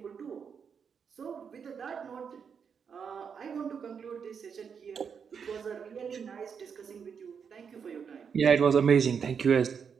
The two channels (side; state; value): left; quieter; 6.7 dB